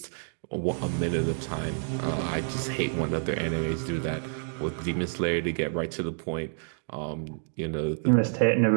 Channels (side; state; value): left; silent; 59 dB below the other